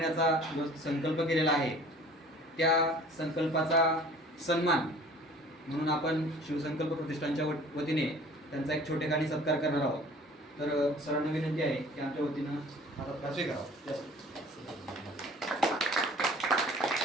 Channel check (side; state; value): both; normal; correlation 0.48